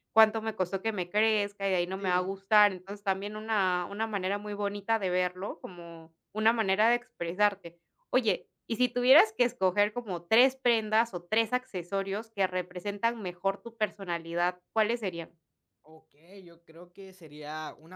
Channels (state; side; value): identical; both; correlation 1.00